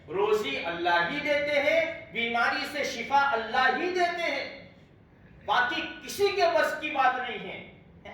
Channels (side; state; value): both; identical; correlation 1.00